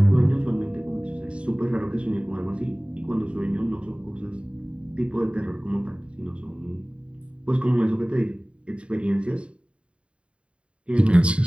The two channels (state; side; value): late; left; 0.059 ms